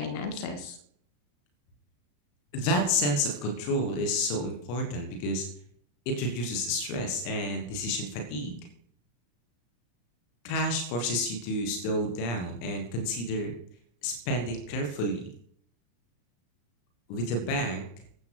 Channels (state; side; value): late; right; 34 ms